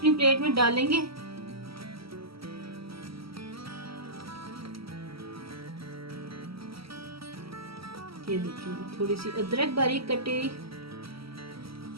प्लेट में डालेंगे। ये देखिए थोड़ी सी अदरक बारीक कटी।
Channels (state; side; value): late; left; 0.75 ms